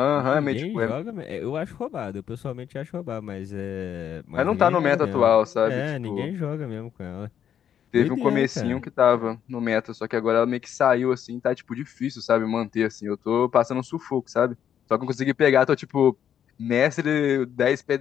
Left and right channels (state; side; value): quieter; right; 9.3 dB